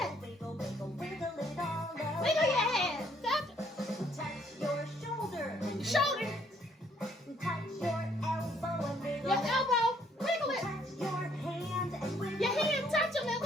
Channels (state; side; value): normal; both; correlation 0.66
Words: Wiggle, wiggle, wiggle it all over. Wiggle your head. Touch your shoulder. Your shoulder. Touch your elbow and wiggle. Your elbow. Wiggle it. Touch your hand and wiggle. Your hand. Touch them and